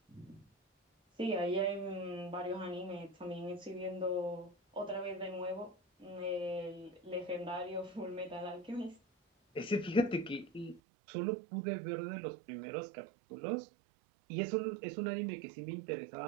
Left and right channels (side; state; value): left; drops out; at 10.8 s